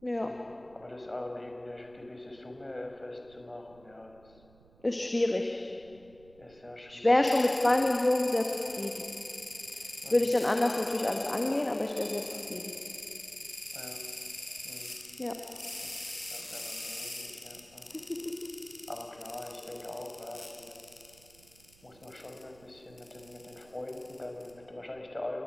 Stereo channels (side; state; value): right; noise; rumble, 26 dB below the sound